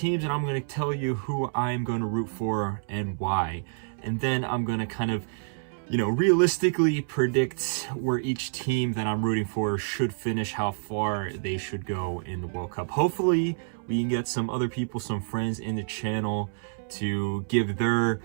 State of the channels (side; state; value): left; silent; 59 dB below the other